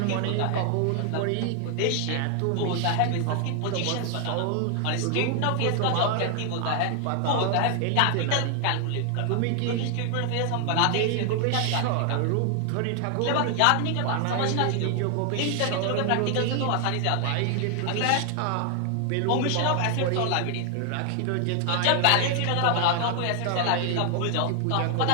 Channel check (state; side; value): different; both; correlation 0.00